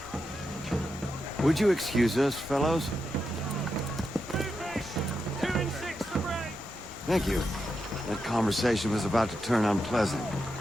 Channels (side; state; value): both; normal; correlation 0.86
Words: Would you excuse us, fellows? Thank you. That conversation was about to turn unpleasant.